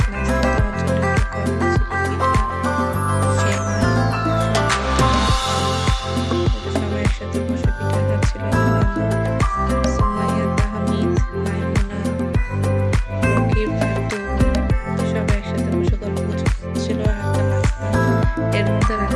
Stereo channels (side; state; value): both; identical; correlation 1.00